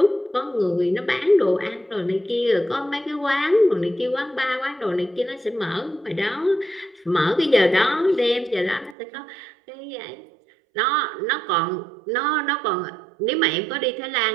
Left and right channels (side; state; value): left; drops out; at 9.0 s